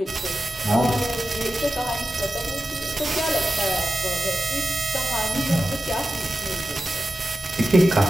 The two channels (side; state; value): both; normal; correlation 0.92